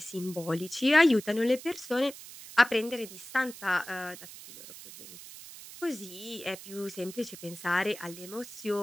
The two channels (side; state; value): right; noise; hiss, 15 dB below the sound